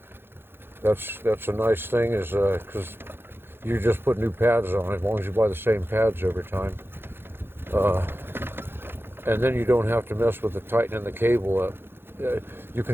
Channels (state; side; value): late; left; 0.11 ms